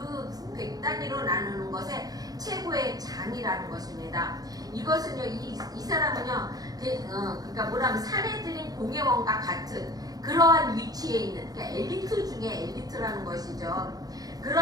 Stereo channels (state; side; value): late; left; 0.18 ms